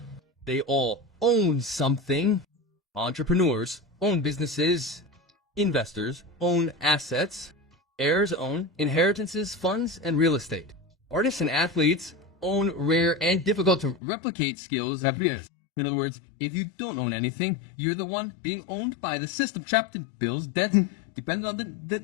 They all own something. Entrepreneurs own businesses. Investors own assets. Heirs own inheritances, funds, and real estate. Artists and athletes own rare and difficult to replicate skills that is. In other words, if you don't own anything, you're the one being owned by the system, trapped in bills, debts, dependent on the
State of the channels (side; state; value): right; drops out; at 14.0 s